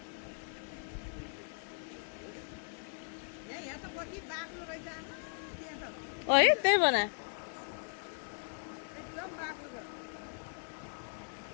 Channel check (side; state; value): right; silent; digital silence